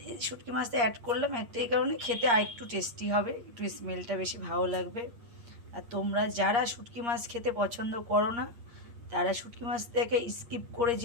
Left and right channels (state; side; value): late; left; 8.6 ms